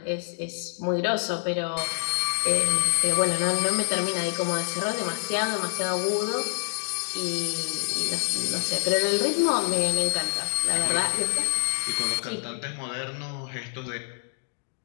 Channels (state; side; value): silent; right; digital silence